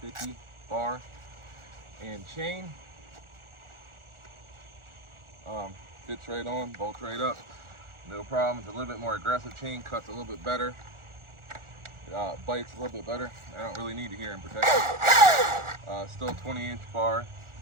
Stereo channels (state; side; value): late; left; 1.4 ms